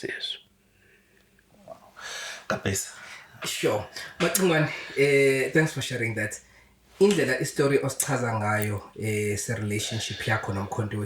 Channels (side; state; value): both; identical; correlation 1.00